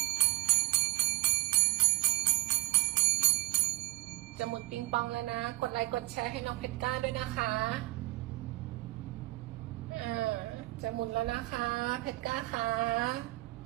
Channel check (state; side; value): quieter; left; 18.9 dB